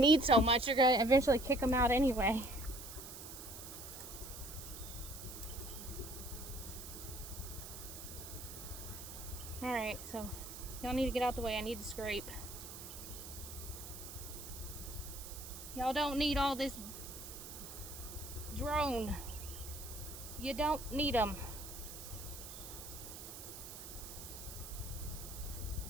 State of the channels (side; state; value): right; noise; hiss, 11 dB below the sound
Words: so much. They're going to eventually kick them out anyway. Alright, so y'all need to get out the way. I need to scrape. Y'all don't need all this drone. You don't need them.